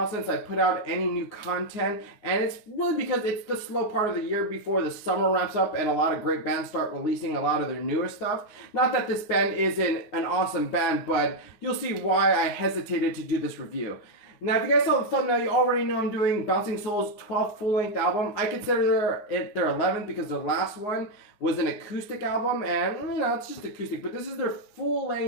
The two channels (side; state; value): right; late; 9.5 ms